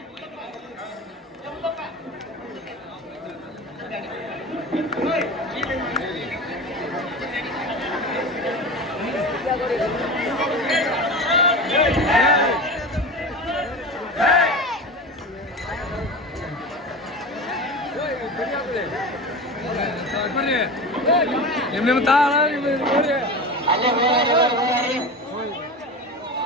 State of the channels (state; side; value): normal; both; correlation 0.29